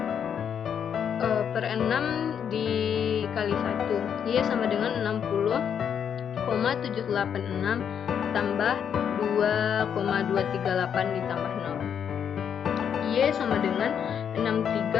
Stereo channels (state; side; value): quieter; right; 8.1 dB